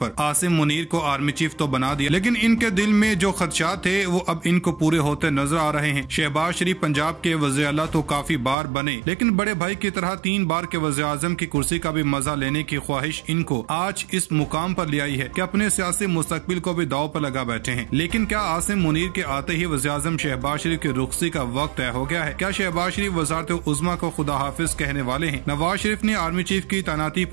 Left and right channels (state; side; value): drops out; left; at 8.6 s